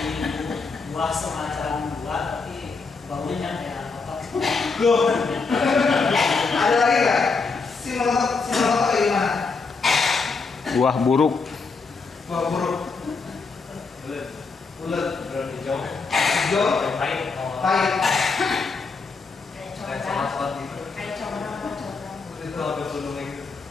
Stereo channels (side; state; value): right; quieter; 4.5 dB